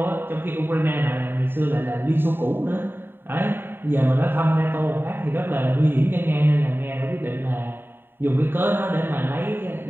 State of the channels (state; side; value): late; left; 0.10 ms